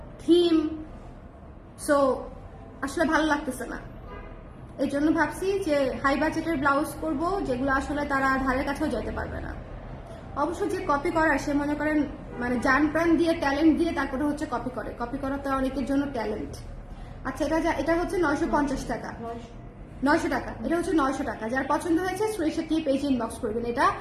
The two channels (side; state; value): both; identical; correlation 1.00